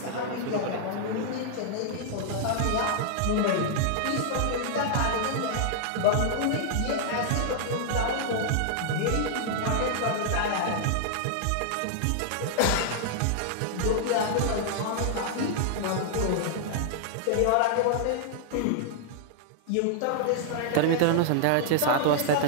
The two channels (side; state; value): both; different; correlation -0.01